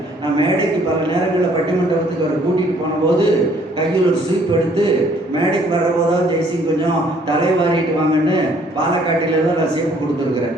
நான் மேடைக்கு பல நேரங்களில் பட்டிமன்றத்துக்கு அவர் கூட்டிகிட்டு போனபோது கையில் ஒரு ஸ்வீப் எடுத்து மேடைக்கு வர்றபோதான் ஜெய்சிங் கொஞ்சம் தலைவாரிட்டு வாங்கன்னு பாலக்காட்டில தான் நான் சேப்பு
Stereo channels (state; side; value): normal; both; correlation 0.61